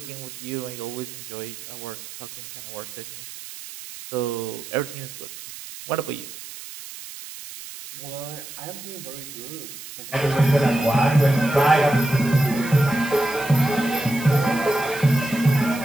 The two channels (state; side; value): noise; right; hiss, 13 dB below the sound